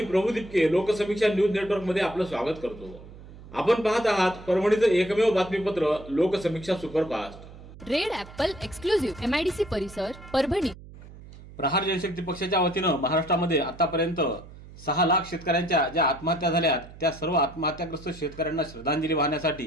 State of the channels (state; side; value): noise; right; hum, 18 dB below the sound